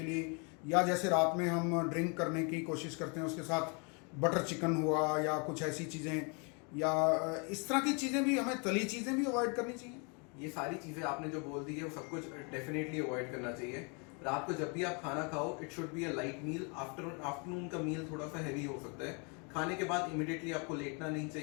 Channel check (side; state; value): right; quieter; 34.4 dB